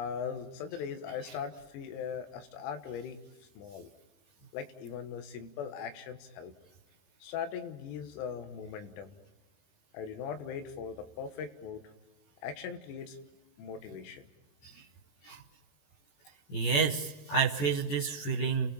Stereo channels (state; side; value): late; right; 21 ms